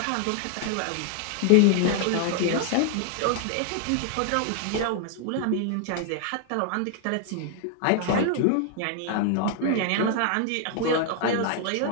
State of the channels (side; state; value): both; different; correlation 0.00